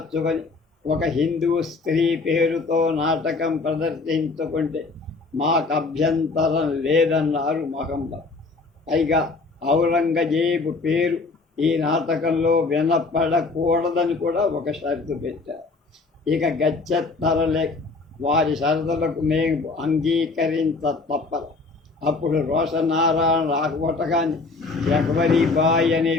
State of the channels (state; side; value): quieter; right; 3.8 dB